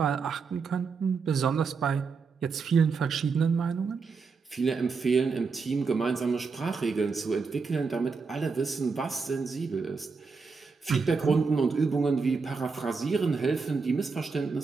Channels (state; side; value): quieter; left; 4.9 dB